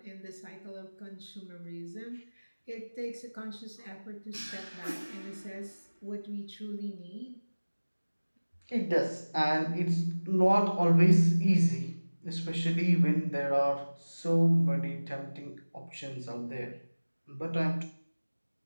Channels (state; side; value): inverted; both; correlation -1.00